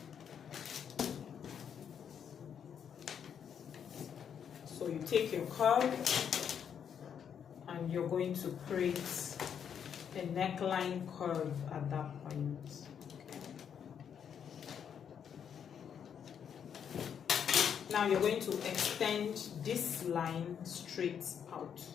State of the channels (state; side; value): quieter; right; 8.0 dB